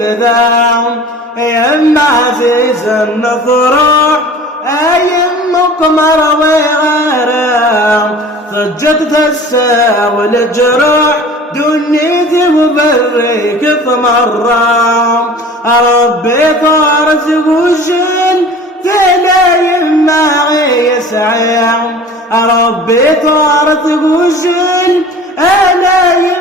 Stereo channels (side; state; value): both; normal; correlation 0.42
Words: يا عزيز النفرح أيم قمر وغرام ضجت تساوي الجروح دنيتي وبريك ثمرام ربي طارت وجل تلايم معي يسعيم ربي طارت وجل